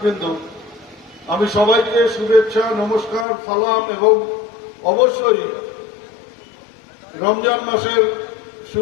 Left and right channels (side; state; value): right; drops out; at 3.2 s